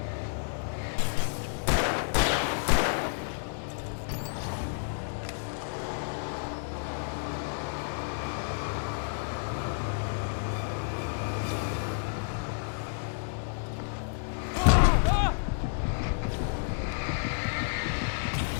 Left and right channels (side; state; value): right; silent; digital silence